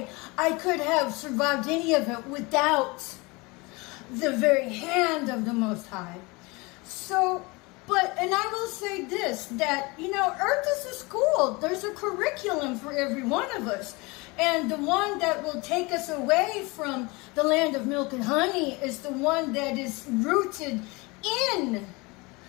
I could have survived any of it without the very hand of the Most High. So, and I will say this, that, Earth is a school. There's a curriculum for every one of us. And the one that will take us away from the land of milk and honey is the one that is rooted in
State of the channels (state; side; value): quieter; right; 25.6 dB